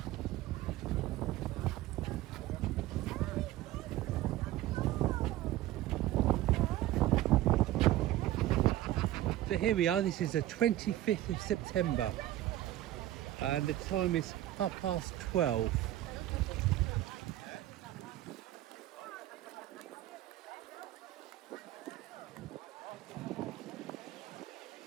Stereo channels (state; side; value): quieter; left; 14.5 dB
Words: So here we are, this is the 25th of September and the time is 12:30.